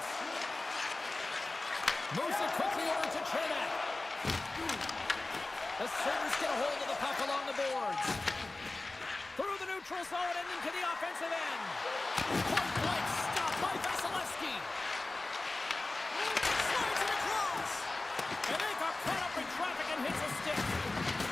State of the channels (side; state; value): right; quieter; 3.1 dB